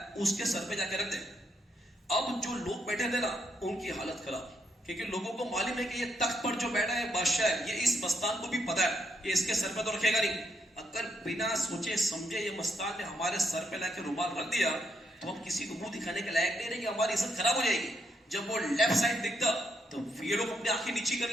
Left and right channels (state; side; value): normal; both; correlation 0.77